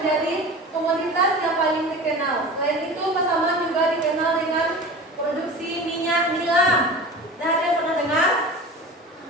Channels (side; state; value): both; normal; correlation 0.34